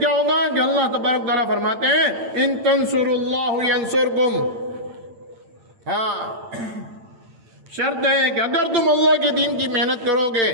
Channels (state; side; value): late; left; 8.8 ms